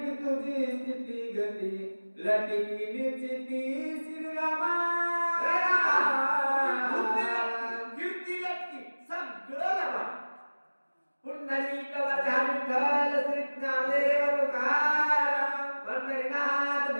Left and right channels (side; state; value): both; inverted; correlation -1.00